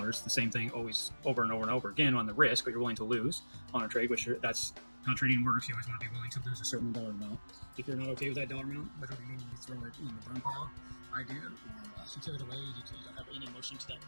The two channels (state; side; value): inverted; both; correlation -1.00